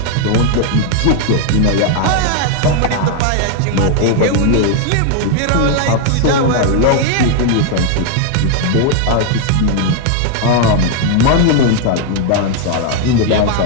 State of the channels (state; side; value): different; both; correlation 0.00